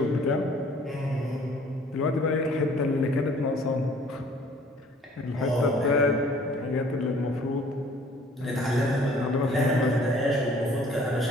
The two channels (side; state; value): both; normal; correlation 0.55